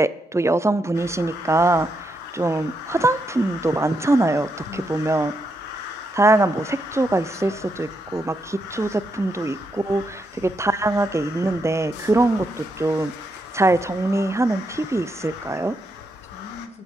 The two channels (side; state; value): both; normal; correlation 0.81